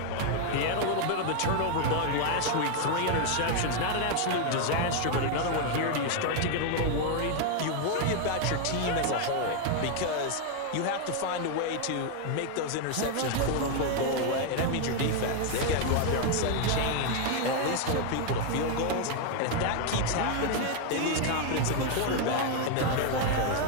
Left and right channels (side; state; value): both; different; correlation 0.01